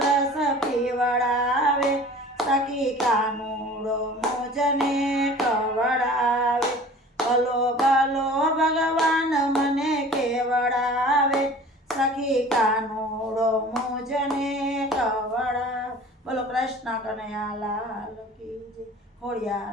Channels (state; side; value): normal; both; correlation 0.44